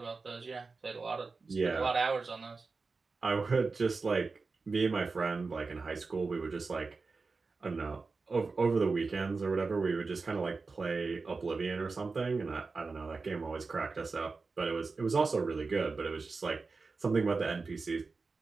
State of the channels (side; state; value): left; quieter; 4.2 dB